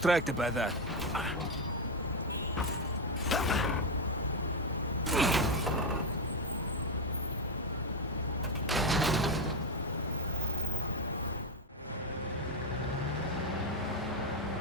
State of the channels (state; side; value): normal; both; correlation 0.08